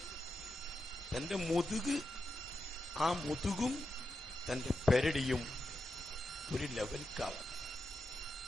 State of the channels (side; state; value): both; normal; correlation 0.88